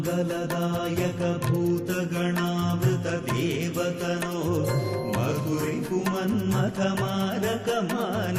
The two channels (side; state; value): both; identical; correlation 1.00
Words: भूतगणावृत देवतनो मधुरिपुमन्मथ मारक